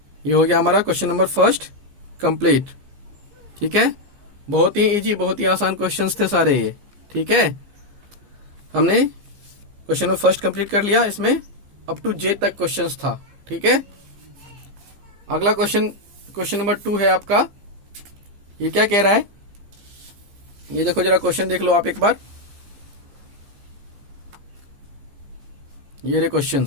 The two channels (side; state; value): left; late; 15 ms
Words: ये हो गया हमारा क्वेश्चन नंबर फर्स्ट कंप्लीट। ठीक है, बहुत ही इजी, बहुत ही आसान क्वेश्चंस थे सारे ये। ठीक है, हमने क्वेश्चन नंबर फर्स्ट कंप्लीट कर लिया, इसमें अप टू जे तक क्वेश्चंस था। ठीक है, अगला क्वेश्चन नंबर 2 है आपका। ये क्या कह रहा है, ये देखो जरा, क्वेश्चन देख लो आप एक बार, ये रहे